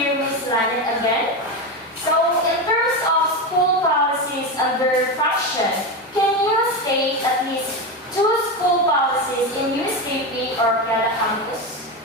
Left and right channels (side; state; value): both; normal; correlation 0.16